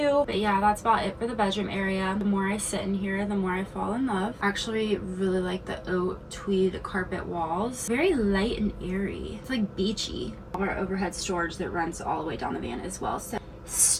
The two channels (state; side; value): identical; both; correlation 1.00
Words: But yeah, that's about it for the bedroom area. The more I sit in here, the more I fall in love. I actually really like the oat tweed carpet walls. Very light and airy. It's like beachy. Our overhead storage that runs all the way down the van as well. So